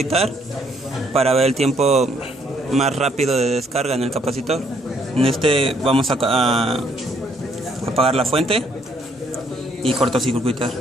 para ver el tiempo más rápido de descarga en el capacitor. En este vamos a apagar la fuente y cortocircuitar.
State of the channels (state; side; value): normal; both; correlation 0.68